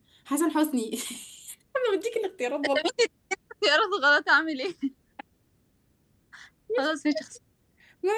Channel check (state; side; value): identical; both; correlation 1.00